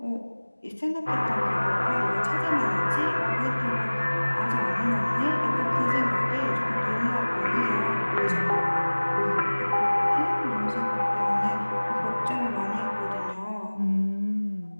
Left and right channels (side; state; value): both; inverted; correlation -1.00